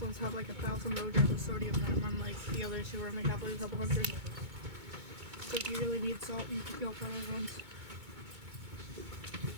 ones have like 1,000 milligrams of sodium in them, unlike the others who only have like a couple hundred. So if you really need salt, you can go for those ones.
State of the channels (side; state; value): left; late; 2.2 ms